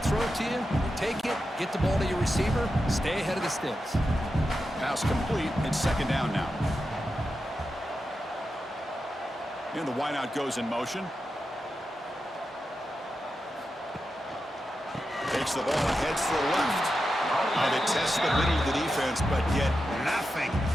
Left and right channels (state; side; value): normal; both; correlation 0.89